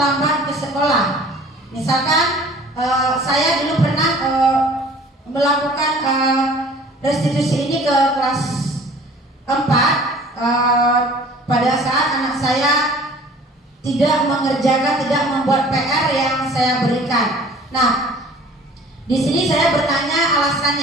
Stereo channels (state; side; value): normal; both; correlation 0.49